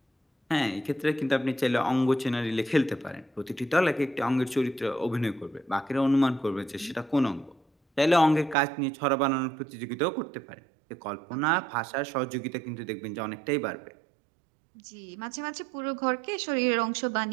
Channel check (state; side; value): drops out; left; at 8.6 s